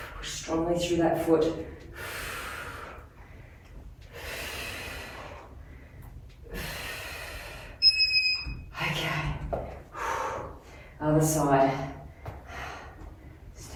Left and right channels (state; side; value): identical; both; correlation 1.00